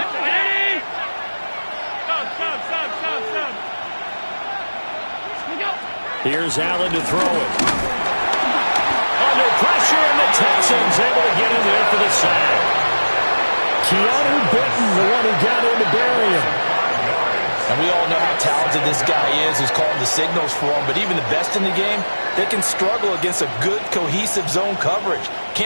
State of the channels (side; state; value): both; inverted; correlation -1.00